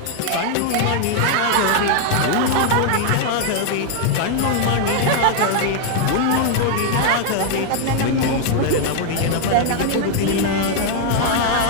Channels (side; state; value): both; different; correlation 0.00